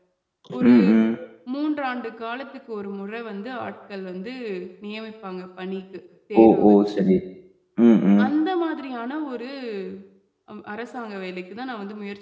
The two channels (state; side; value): identical; both; correlation 1.00